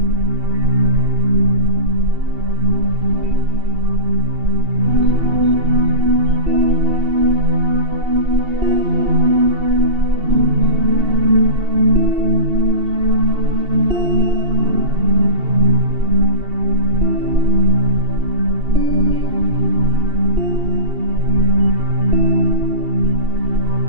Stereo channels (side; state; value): left; late; 2.7 ms